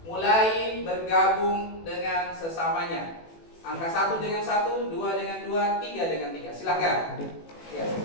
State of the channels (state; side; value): late; right; 18 ms